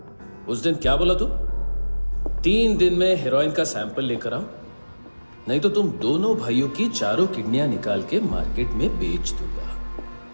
उस दिन क्या बोला तू? 3 दिन में हेरोइन का सैंपल लेकर आओ, नहीं तो तुम दोनों भाइयों की चारों किडनियां निकाल के मार्केट में बेच दूंगा।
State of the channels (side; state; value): both; inverted; correlation -1.00